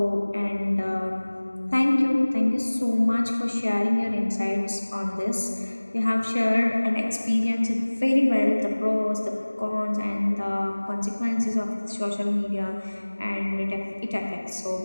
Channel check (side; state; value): both; inverted; correlation -1.00